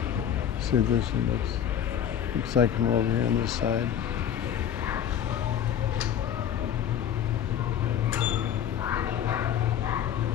See what this one looks. Looks like I'm over here on this side.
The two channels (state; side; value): quieter; right; 9.6 dB